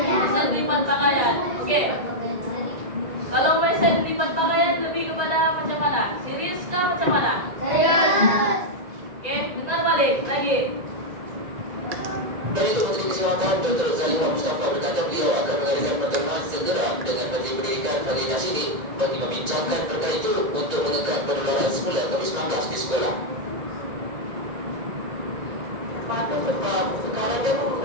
lipat pakaian. Oke. Kalau mesen lipat pakaian lebih kepada macam mana? Serius kah macam mana? Serius. Oke, dengar balik lagi. Dan itu Menteri Kesihatan Dr. Zaliha Mustafa berkata beliau akan mengadakan pertemuan segera dengan Menteri Pendidikan Fadli Nasiri bagi membincangkan perkara itu untuk menekan penularan semula COVID-19 di sekolah.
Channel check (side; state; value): left; late; 1.9 ms